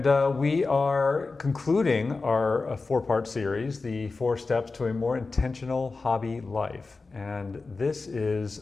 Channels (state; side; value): quieter; right; 3.9 dB